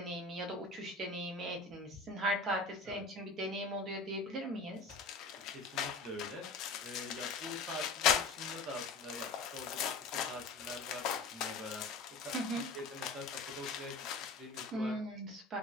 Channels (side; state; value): right; quieter; 3.6 dB